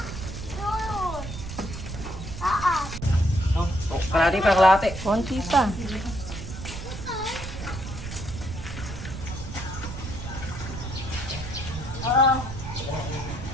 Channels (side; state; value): right; noise; rumble, 8 dB below the sound